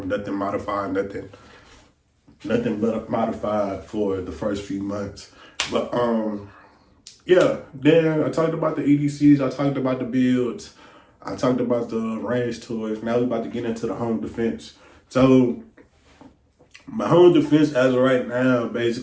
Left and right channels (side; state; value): both; identical; correlation 1.00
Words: Nothing modified, nothing but modified for the first few months. But yeah, then I talked about the EDCs, I talked about the builds, I talked about the range toys. Now we're about to get into the home defense. So my home defense as of right now